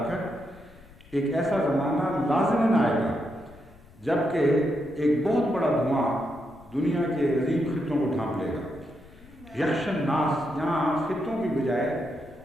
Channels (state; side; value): noise; left; rumble, 23 dB below the sound